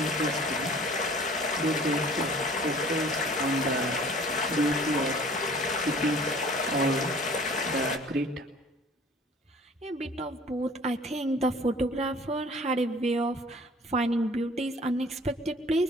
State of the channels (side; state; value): both; normal; correlation 0.50